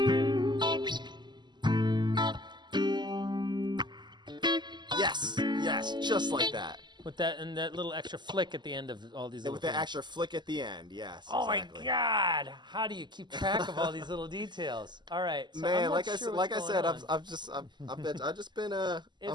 Yes, just like that. With that and that little extra flick at the end of all these. And Little with that things. extra flick at the end, yes. Oh exactly. my God! How do you keep track of all these little details? All right, so I'm Man, not like sure I what's said, going on. I've just been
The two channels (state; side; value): late; left; 0.21 ms